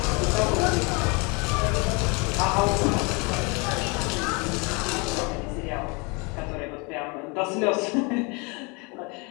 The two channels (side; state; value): right; quieter; 30.0 dB